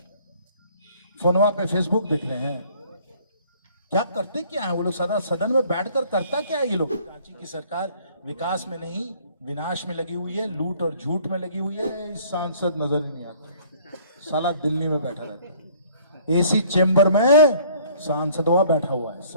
फोनवा पे फेसबुक देख रहे हैं। क्या करते क्या है वो लोग? सदन में बैठकर करता क्या है ये लोग? रांची की सरकार विकास में नहीं विनाश में लगी हुई है, लूट और झूठ में लगी हुई है। इस सांसद नजर ही नहीं आता, साला दिल्ली में बैठा रहता है, एसी चेंबर में सांसदवा बैठा हुआ है,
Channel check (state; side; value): inverted; both; correlation -0.56